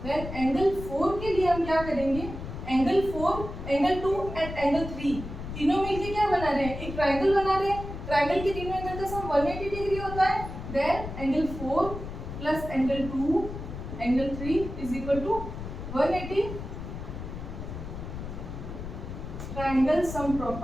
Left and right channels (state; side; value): noise; left; rumble, 8 dB below the sound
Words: देन एंगल 4 के लिए हम क्या करेंगे? एंगल 4, एंगल 2 एंड एंगल 3 तीनों मिलके क्या बना रहे हैं? एक ट्रायंगल बना रहे हैं। ट्रायंगल के तीनों एंगल का सम 180 डिग्री होता है। Then angle 4 plus angle 2 angle 3 is equal to 180 triangle sum